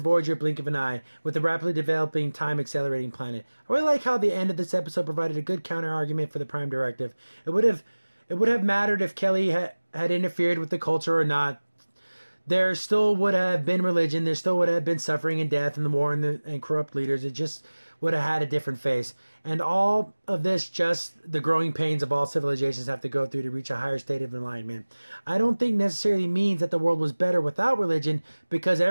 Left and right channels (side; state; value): both; inverted; correlation -1.00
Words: Blink of an Eye with the rapidly developing time-accelerating planet. I really like how the end of this episode provided a good counter-argument for the Prime Directive. It would have mattered if Kelly had interfered with the culture or not. There still would have been religion. There still would have been suffering and death and the war and corrupt leaders. It just would have had a different face. And all of this, just the growing pains of all civilizations have to go through to reach a higher state of enlightenment. I don't think necessarily means that the world was better without religion, because